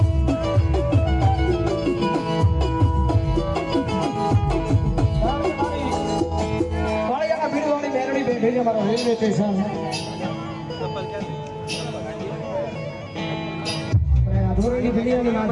રેલવે સ્ટેશન ધોરણી દુનિયાની માં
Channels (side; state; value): both; identical; correlation 1.00